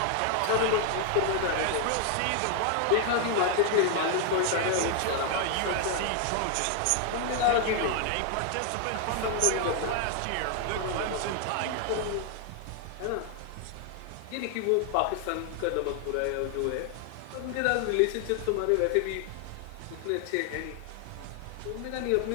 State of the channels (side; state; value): both; different; correlation 0.00